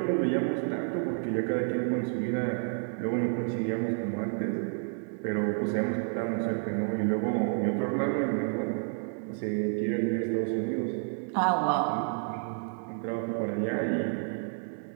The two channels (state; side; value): silent; left; 58 dB below the other